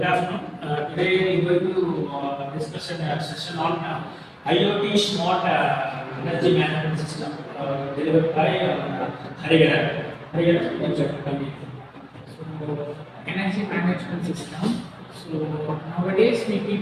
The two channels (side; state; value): both; identical; correlation 1.00